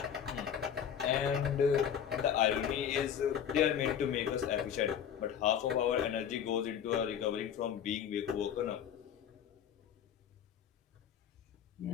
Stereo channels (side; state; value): right; quieter; 8.7 dB